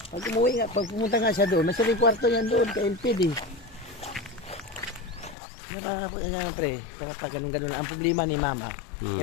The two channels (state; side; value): drops out; right; at 5.4 s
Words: Pag umuwi nga, pag pumunta nga siya doon, may kwarto niyan doon kay Ilpid eh. Yan pre, kapag ganun-ganun ang problema ni mama,